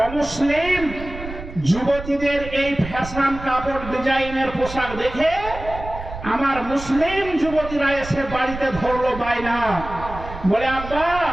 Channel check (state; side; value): noise; right; rumble, 11 dB below the sound